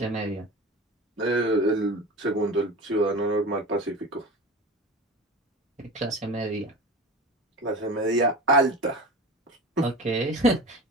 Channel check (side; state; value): both; normal; correlation 0.32